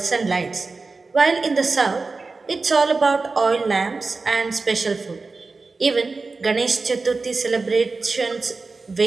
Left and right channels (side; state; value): left; quieter; 3.9 dB